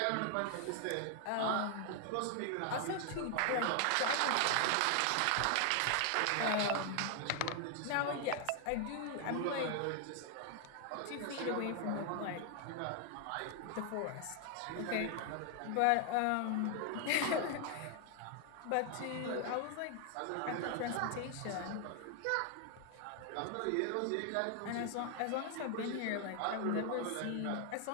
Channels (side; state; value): both; different; correlation 0.00